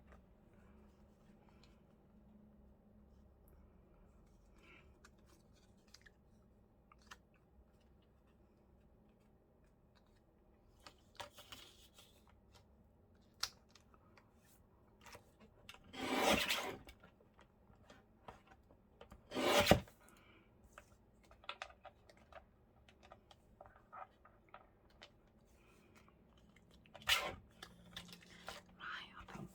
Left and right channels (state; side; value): identical; both; correlation 1.00